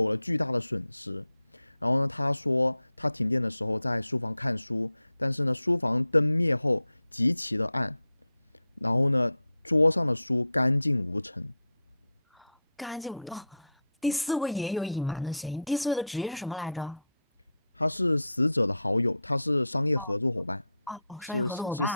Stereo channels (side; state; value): both; inverted; correlation -0.79